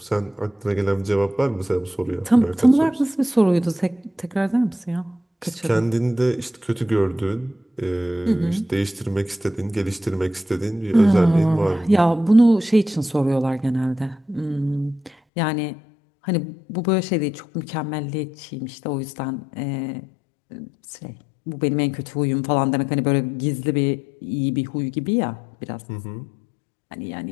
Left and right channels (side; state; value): right; drops out; at 15.2 s